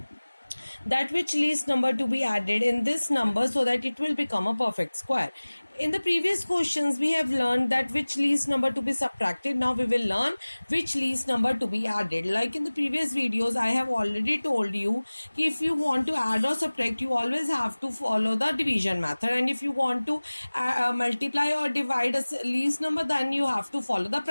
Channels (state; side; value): inverted; both; correlation -1.00